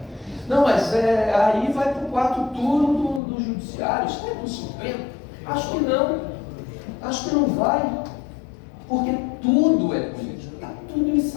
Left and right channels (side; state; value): right; drops out; at 3.2 s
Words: Não, mas aí vai para o quarto turno do judiciário, isso vai para o Supremo? Acho que não vai, porque tudo é político, está tudo